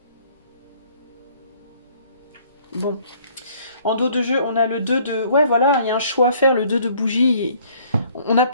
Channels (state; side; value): inverted; both; correlation -0.59